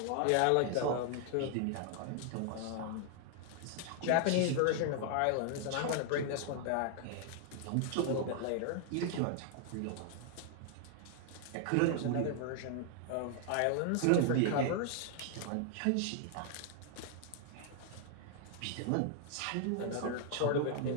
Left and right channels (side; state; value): both; different; correlation 0.00